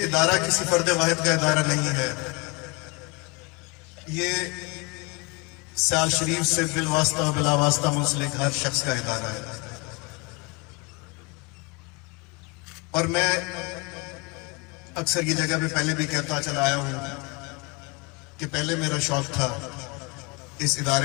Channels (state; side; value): quieter; right; 27.1 dB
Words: ادارہ کسی فرد واحد کا ادارہ نہیں ہے، یہ سیال شریف سے بالواسطہ و بلا واسطہ منسلک ہر شخص کا ادارہ ہے. اور میں اکثر یہ جگہ پہ پہلے بھی کہتا چلا آیا ہوں کہ پہلے میرا شوق تھا اس